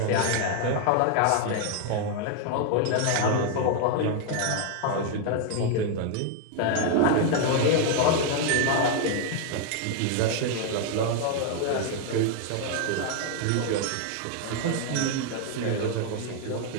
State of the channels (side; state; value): both; different; correlation 0.00